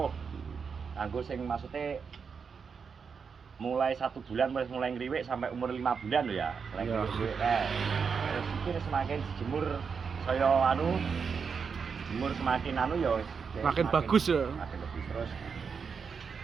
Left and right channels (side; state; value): left; quieter; 5.9 dB